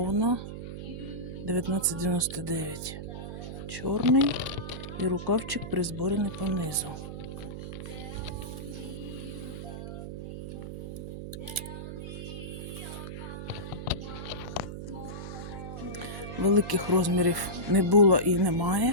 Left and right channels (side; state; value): right; noise; hum, 8 dB below the sound